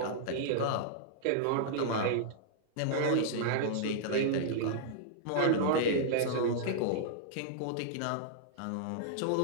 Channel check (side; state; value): both; different; correlation -0.01